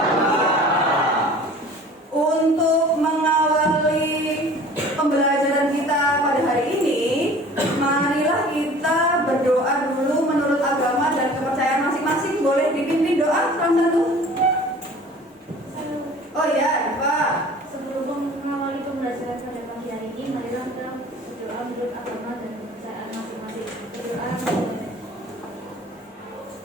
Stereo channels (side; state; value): both; normal; correlation 0.46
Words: Untuk mengawali pembelajaran kita pada hari ini, marilah kita berdoa dulu menurut agama dan kepercayaan masing-masing. Boleh dipimpin doa satu-satu? Oh ya, Pak. Sebelum mengawali pembelajaran pada pagi hari ini, marilah kita berdoa menurut agama dan kepercayaan masing-masing. Berdoa.